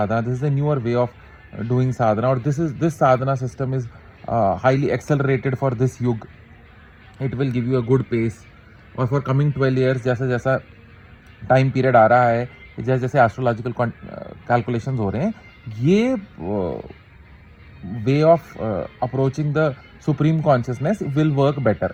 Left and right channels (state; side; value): identical; both; correlation 1.00